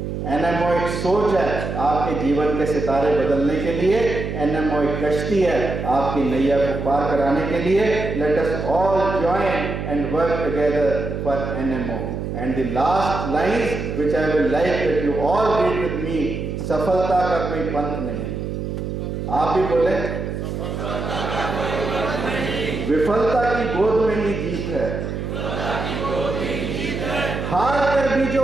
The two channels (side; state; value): right; noise; hum, 4 dB below the sound